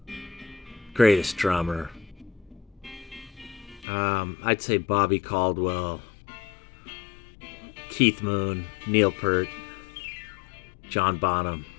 greatest drummer. I'd say Bobby Caldwell, Keith Moon, Neil Peart, John Bonham.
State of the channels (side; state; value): right; drops out; at 3.9 s